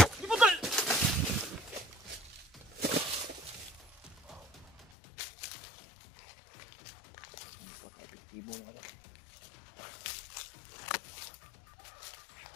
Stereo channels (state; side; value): drops out; right; at 4.9 s